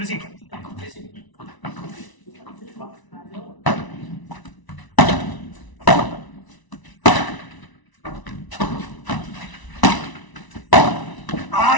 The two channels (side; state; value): right; late; 1.0 ms